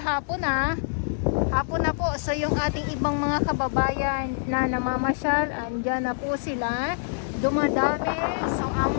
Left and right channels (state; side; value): silent; right; digital silence